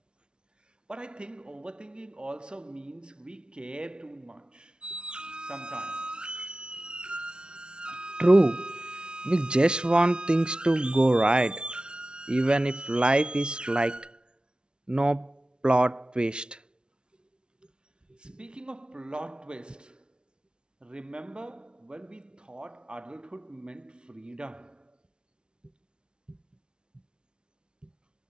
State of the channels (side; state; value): left; late; 0.055 ms